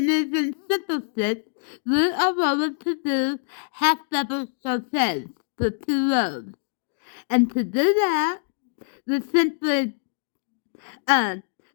simple stitch, we are going to do half double crochets for two rows. And to do that, we simply yarn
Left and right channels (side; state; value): right; silent; digital silence